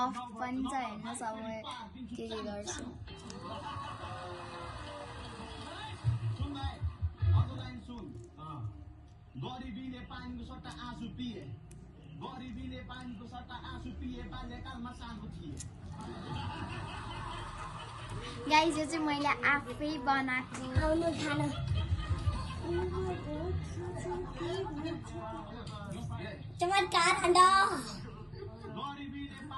पनि छ हैन। सब के गर्छु गरिबीले पानीको सट्टा आँसु पिए, गरिबीले पानीको सट्टा आँसु पिए, बाल्यकालमा सानो थिए। गाइस, यो चाहिँ मैले आफै बनाएको आउनु खान। चमत्कार खण्ड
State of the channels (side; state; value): both; identical; correlation 1.00